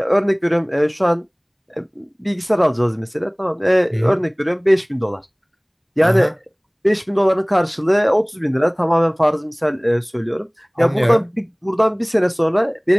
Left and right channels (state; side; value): identical; both; correlation 1.00